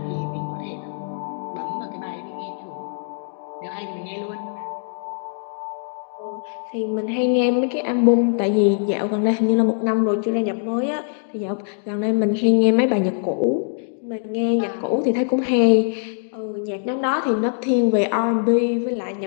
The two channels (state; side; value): silent; right; digital silence